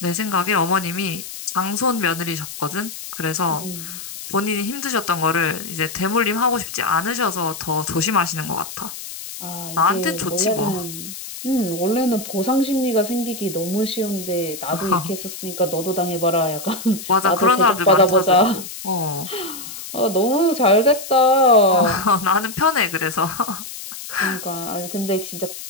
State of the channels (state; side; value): noise; left; hiss, 11 dB below the sound